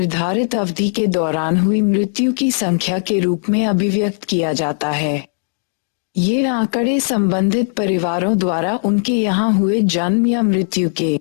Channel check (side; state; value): right; silent; digital silence